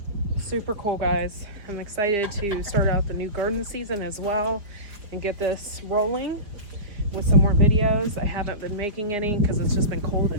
Super cool, guys. I'm excited to start out the new garden season as well and get this rolling with some more videos. I haven't been making any because it's just been cold and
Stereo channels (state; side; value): late; left; 4.9 ms